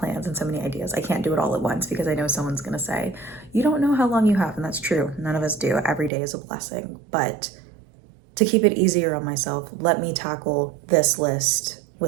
and so many ideas, I can't do it all at once, because I know someone's going to say, you don't know how long you have. And that's true. None of us do. Every day is a blessing. But to keep it easier on myself, let me tackle this list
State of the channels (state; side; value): drops out; left; at 6.1 s